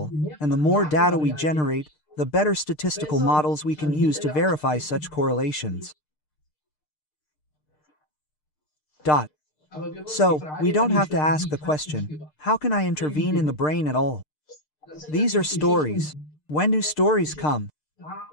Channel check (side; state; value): right; late; 6.6 ms